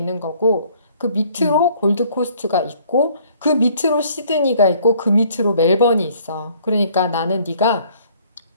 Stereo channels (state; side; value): inverted; both; correlation -0.59